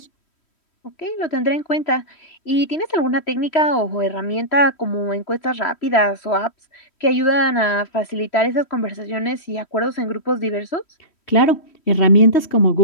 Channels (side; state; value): right; late; 3.1 ms